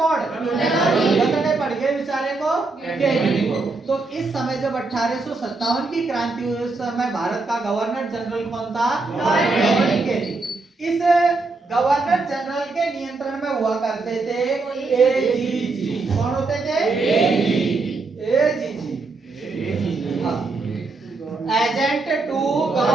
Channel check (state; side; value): quieter; left; 3.6 dB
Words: लगने पड़ गए बेचारे को कैनिंग को। तो इस समय जब 1857 की क्रांति हुई, उस समय भारत का गवर्नर जनरल कौन था? Lord Canning. इस गवर्नर जनरल के नियंत्रण में हुआ करते थे एजीजी। कौन होते थे? AGG, agent to